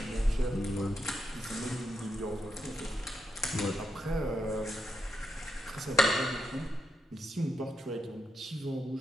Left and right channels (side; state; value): both; normal; correlation 0.83